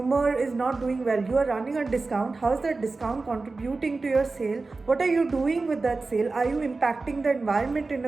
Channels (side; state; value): left; quieter; 3.7 dB